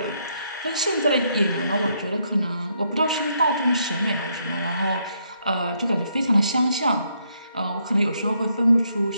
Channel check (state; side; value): inverted; both; correlation -0.75